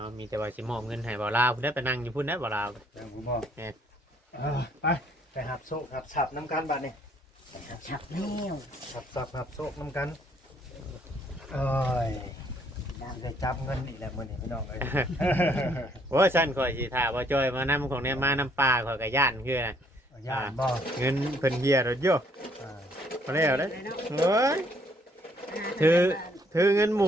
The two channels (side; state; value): both; normal; correlation 0.66